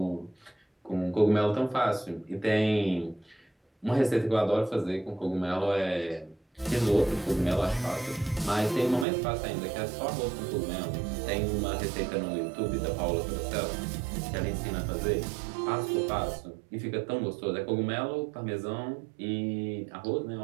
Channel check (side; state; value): left; drops out; at 9.1 s